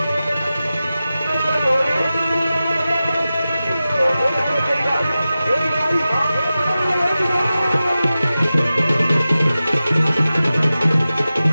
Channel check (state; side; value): inverted; both; correlation -0.94